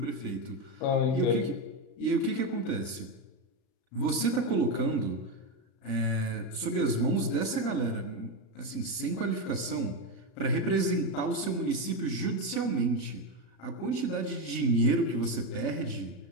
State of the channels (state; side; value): late; right; 35 ms